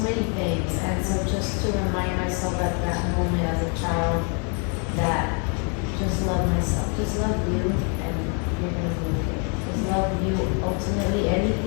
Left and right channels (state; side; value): quieter; right; 38.4 dB